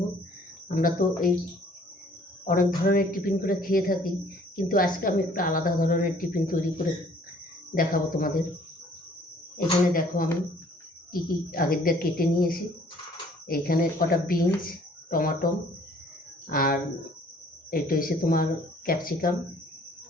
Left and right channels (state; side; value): normal; both; correlation 0.57